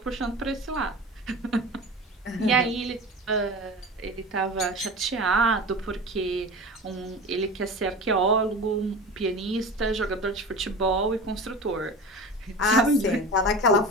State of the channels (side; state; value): both; normal; correlation 0.32